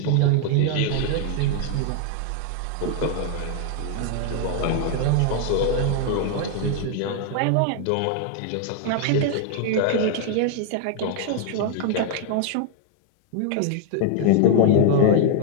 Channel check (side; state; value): both; different; correlation 0.00